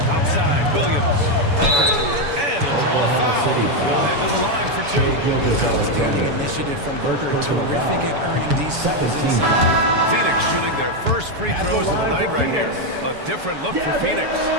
Outside Williams. And he'll draw the foul. He'll head to the line for 2. Outstanding initiative from Booker. Terrific at earning these fouls inside. Phoenix shooting their first free throws of the night right here. A different look for Phoenix.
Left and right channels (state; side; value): late; left; 7.0 ms